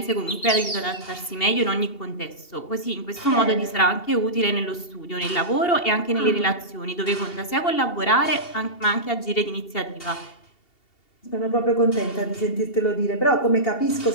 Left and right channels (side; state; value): right; late; 2.7 ms